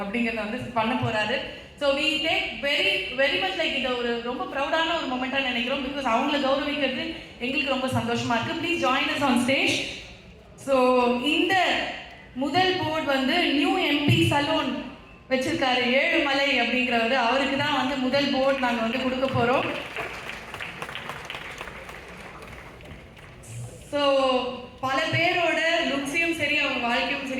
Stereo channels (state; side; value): identical; both; correlation 1.00